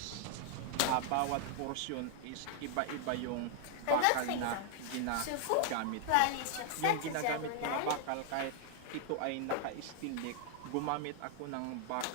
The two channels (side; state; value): both; different; correlation 0.00